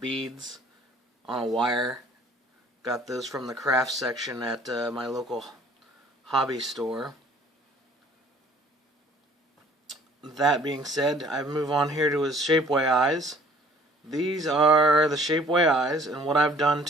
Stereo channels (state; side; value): normal; both; correlation 0.55